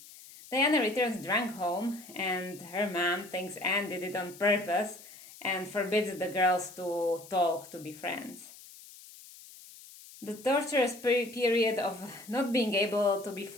Diana returns drunk home, and her mom thinks Anne did it on purpose and forbids the girls to talk, to be friends. The torturous period of not being able to be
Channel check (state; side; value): noise; left; hiss, 19 dB below the sound